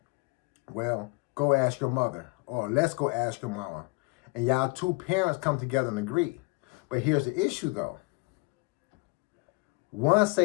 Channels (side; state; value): right; quieter; 26.9 dB